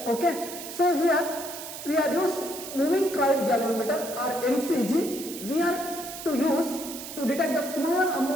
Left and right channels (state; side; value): noise; right; hiss, 10 dB below the sound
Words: Okay. So here we are use moving coil galvanometer or MCG. We are to use to detect the small